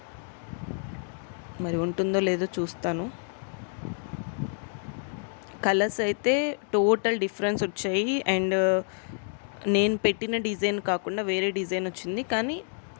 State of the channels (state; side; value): silent; right; 59 dB below the other